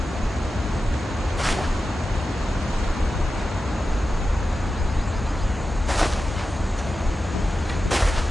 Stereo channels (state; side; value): normal; both; correlation 0.92